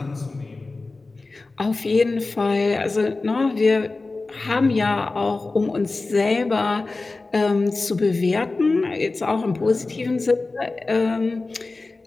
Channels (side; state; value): right; quieter; 3.5 dB